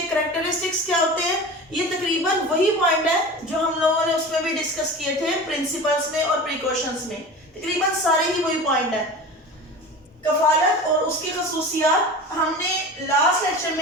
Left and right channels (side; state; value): both; normal; correlation 0.33